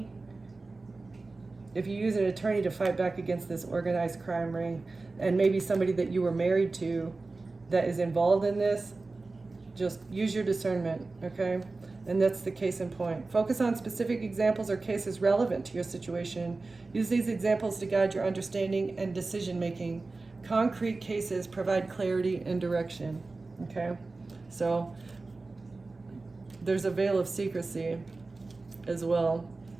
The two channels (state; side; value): quieter; left; 3.6 dB